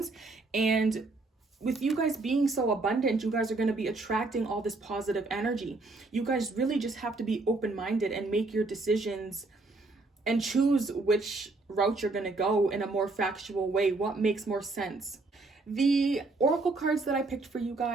And with you guys being so abundant, you guys are going to be attracting all this positive energy. You guys really just have to be open-minded and make your decisions and choose which route you're going to go in a more factual way. What makes more sense? The oracle cards that I picked for you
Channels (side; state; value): left; quieter; 3.4 dB